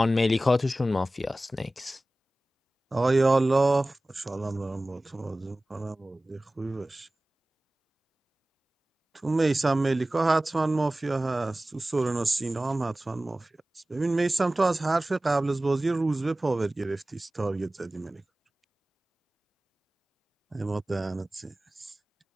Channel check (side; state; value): both; normal; correlation 0.97